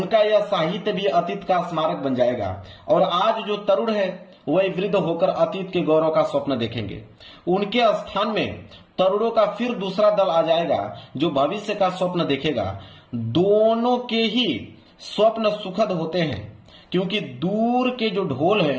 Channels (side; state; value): both; identical; correlation 1.00